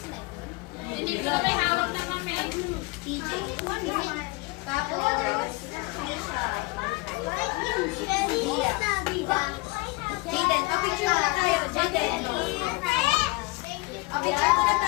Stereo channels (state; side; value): quieter; right; 24.1 dB